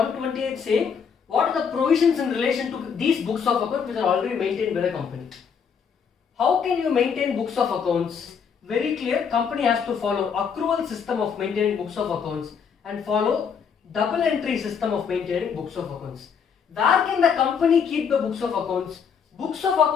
saying? What are the provisions in relation to these books of accounts which are already maintained by the company? How can you maintain books of accounts? Very clear, company has to follow accrual system of maintaining books of accounts and follow double entry system of maintaining books of accounts. Where can the company keep the books of accounts? Books of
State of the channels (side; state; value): right; quieter; 6.7 dB